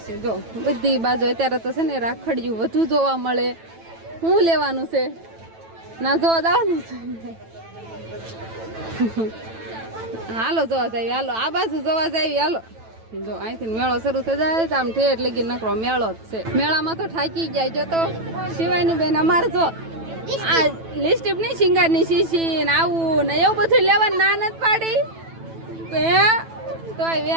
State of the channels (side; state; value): left; late; 9.1 ms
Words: જો બધી બાજુ અત્યારે તો છે ને રાખડિયું વધુ જોવા મળે. શું લેવાનું છે? ના જોવા જવાનું છે. હાલો જોવા જાય. હાલો આ બાજુ જોવા જાય. હાલો જો અહીંથી મેળો શરૂ થઈ જાય આમ ઠેઠ લગી નકરો મેળો જ છે. મેળામાં તો થાકી જાય. જો તો શિવાની બેન અમારે જો આ લિપસ્ટિક નહીં શિંગારની શીશી ને આવું ને એવું બધું લેવાનું ના નથી પાડી તોય